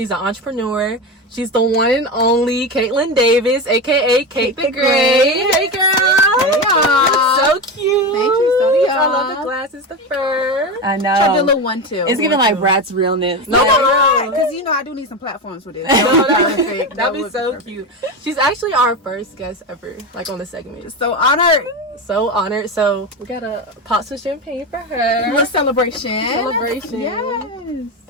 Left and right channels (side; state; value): both; normal; correlation 0.19